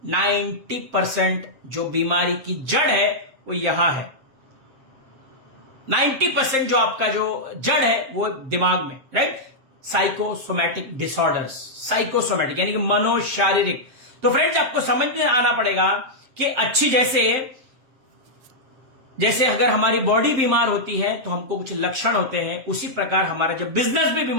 90% जो बीमारी की जड़ है वो यहां है। 90% जो आपका जो जड़ है वो दिमाग में, राइट। साइकोसोमैटिक डिसऑर्डर्स, साइकोसोमैटिक यानी कि मनोशारीरिक। तो फ्रेंड्स, आपको समझ में आना पड़ेगा कि अच्छी जैसे अगर हमारी बॉडी बीमार होती है तो हमको कुछ लक्षण होते हैं, उसी प्रकार हमारा जब बिजनेस भी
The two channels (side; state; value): left; late; 7.8 ms